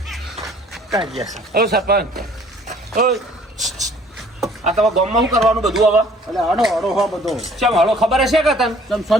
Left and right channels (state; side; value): normal; both; correlation 0.56